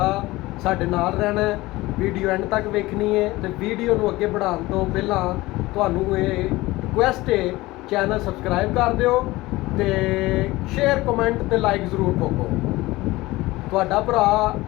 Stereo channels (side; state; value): right; quieter; 19.4 dB